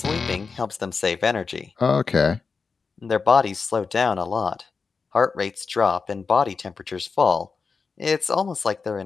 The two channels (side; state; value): right; quieter; 5.0 dB